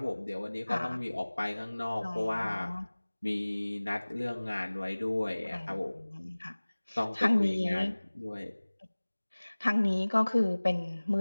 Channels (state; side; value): inverted; both; correlation -1.00